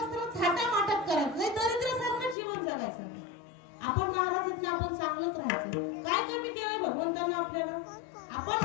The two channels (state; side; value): drops out; right; at 2.4 s